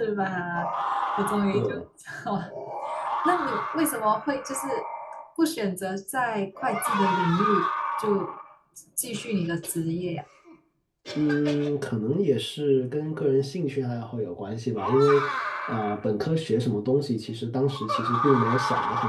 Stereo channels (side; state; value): both; identical; correlation 1.00